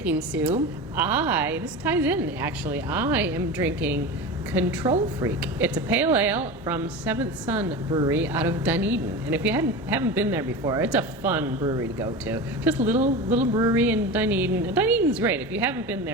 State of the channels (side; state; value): both; normal; correlation 0.27